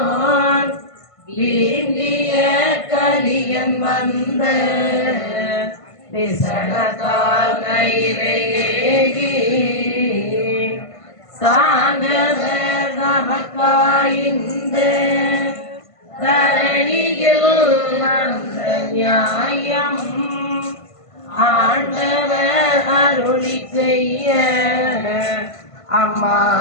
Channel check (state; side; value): late; right; 1.5 ms